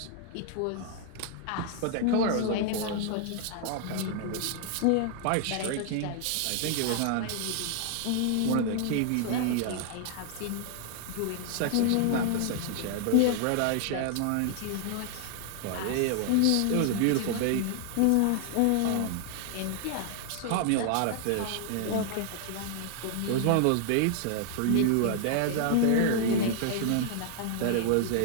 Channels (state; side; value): different; both; correlation 0.00